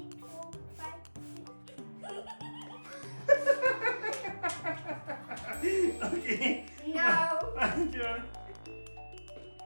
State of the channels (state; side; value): inverted; both; correlation -1.00